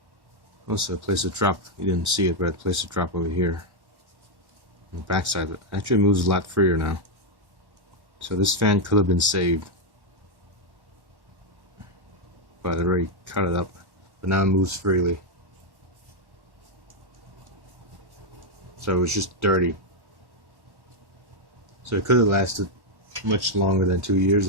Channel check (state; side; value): late; left; 1.1 ms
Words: Also, I placed a drop. You didn't see it, but I placed a drop over here. On the back side. It actually moves a lot freer now. So this fan could have been saved. But I already cut it up. But now it moves freely. So it was just dirty. So it could have lasted much longer than 2 years